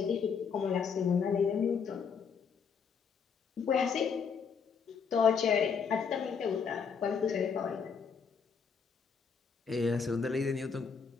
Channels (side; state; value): right; quieter; 6.2 dB